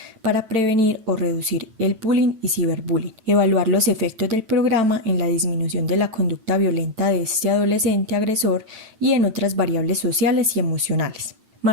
para prevenir o reducir el bullying y ciberbullying, evaluar los efectos del programa en la disminución de la conducta violenta de este adolescente agresor y en otras variables sociales y emocionales.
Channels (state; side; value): late; left; 8.9 ms